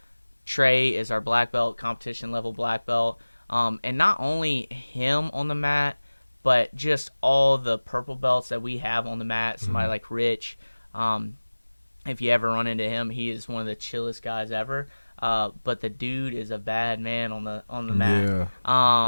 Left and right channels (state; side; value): inverted; both; correlation -1.00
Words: Trey is our black belt, competition level black belt. And not only him on the mat, but just all the purple belts that we have on the mat. Somebody like Rich, if you ever run into him, he is one of the chillest guys ever. But the dude is a bad man on the mat.